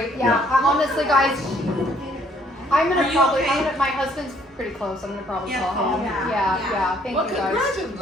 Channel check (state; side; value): normal; both; correlation 0.64